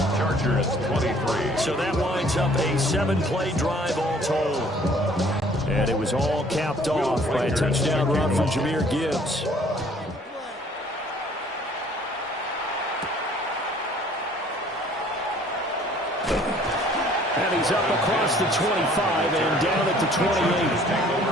Chargers 23. So that winds up a 7-play drive all told. And it was all capped off by a touchdown run from Jahmyr Gibbs. And he's up across the 25 and down at the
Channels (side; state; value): both; normal; correlation 0.56